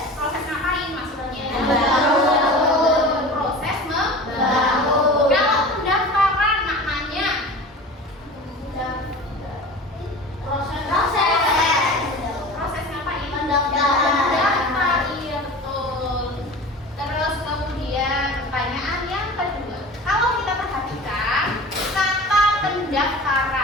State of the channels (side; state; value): both; normal; correlation 0.37